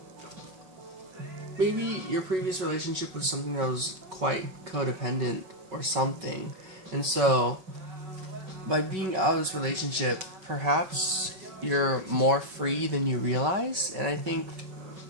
maybe your previous relationship was something that was quite codependent or something, and so by being out of this relationship, perhaps you're more free than you realize. And I think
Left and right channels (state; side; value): late; left; 5.3 ms